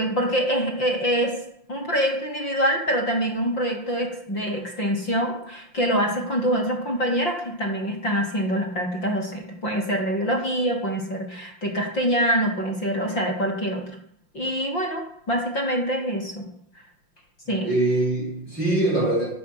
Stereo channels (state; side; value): late; right; 5.7 ms